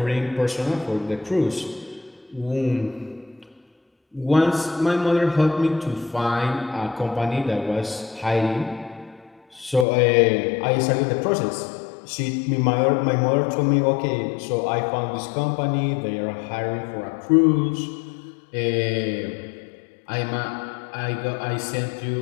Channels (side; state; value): right; drops out; at 9.9 s